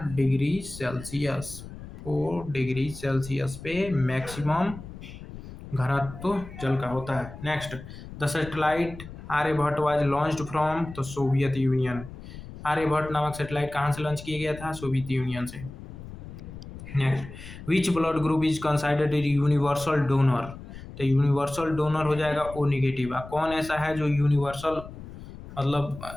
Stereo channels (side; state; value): left; noise; rumble, 13 dB below the sound